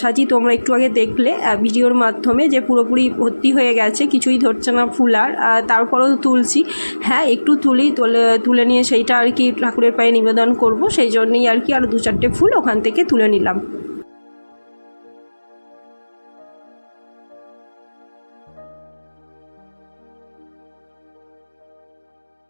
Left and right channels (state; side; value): inverted; both; correlation -1.00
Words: তোমরা একটু আগে দেখলে ভিডিওর মাধ্যমে যে পুরোপুরি ভর্তি হয়ে গেছে, কিছুই ধরছে না ফুল। আর তারপরেও তুলছি, হ্যাঁ একটু তুলে নিয়ে সেইটা আর কি ঠাকুরের পায়ে নিবেদন করব, সেই জন্যই আর কি আর 2-4টে ফুল ওখান থেকে তুলে নিলাম।